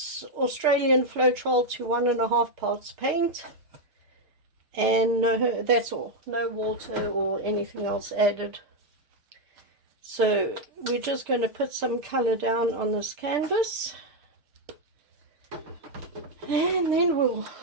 Australian Floetrol to 1.5 parts paint, and that's all, no water or anything else added. So we're just going to put some color down on this canvas, and then we'll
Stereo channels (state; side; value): late; left; 6.7 ms